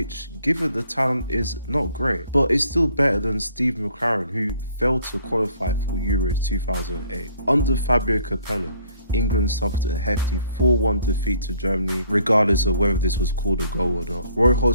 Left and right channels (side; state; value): both; inverted; correlation -0.62